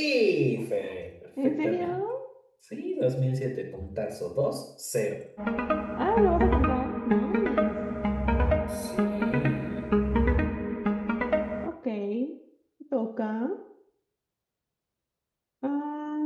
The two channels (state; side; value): identical; both; correlation 1.00